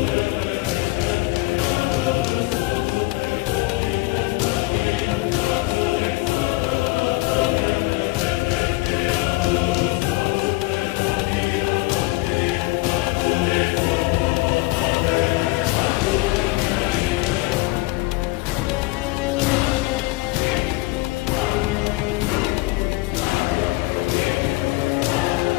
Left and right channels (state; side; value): quieter; right; 21.7 dB